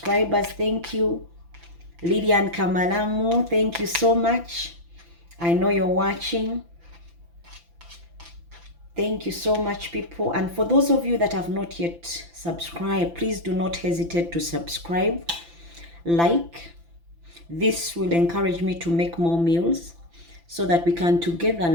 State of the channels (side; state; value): left; late; 5.9 ms